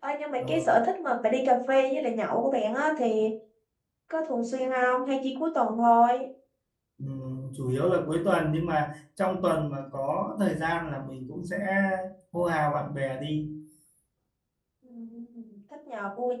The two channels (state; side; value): identical; both; correlation 1.00